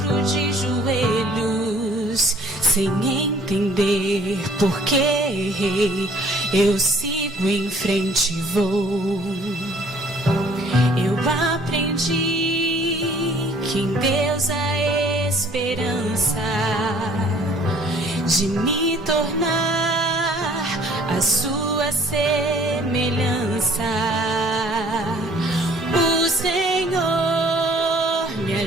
de joelhos, sem entender por que errei. Eu sigo em frente e vou. Eu aprendi que em Deus há esperança de me tornar a sua semelhança. O Senhor me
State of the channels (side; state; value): both; normal; correlation 0.57